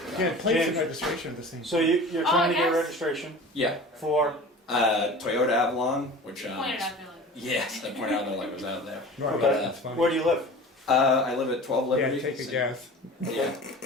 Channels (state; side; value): normal; both; correlation 0.38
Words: Yeah, plates and James. registration are the same. So you're Oh, trying to get yes. registration Yeah. for, Toyota Avalon, which Pointed out there, like, yes, I pointed out that like was out there. Right, okay. that's funny. Where do you live? I live at 12 Yeah, Liberty. take a guess. Yeah,